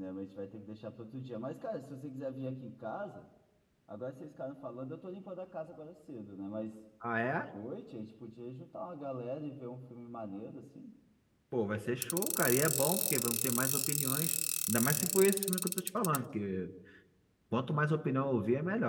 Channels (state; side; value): identical; both; correlation 1.00